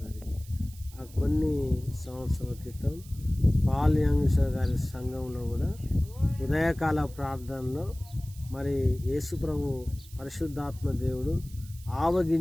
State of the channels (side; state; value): right; noise; hiss, 21 dB below the sound